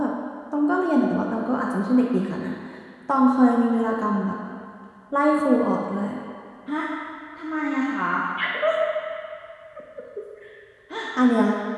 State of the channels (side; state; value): both; identical; correlation 1.00